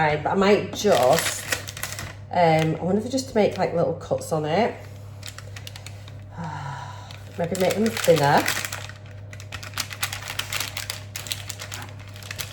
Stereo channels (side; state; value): both; identical; correlation 1.00